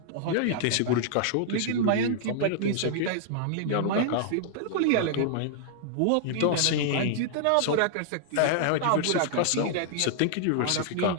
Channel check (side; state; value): both; different; correlation -0.01